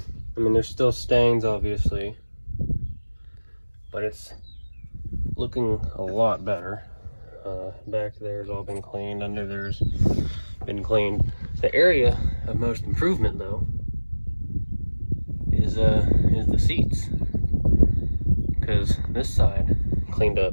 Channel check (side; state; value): both; inverted; correlation -1.00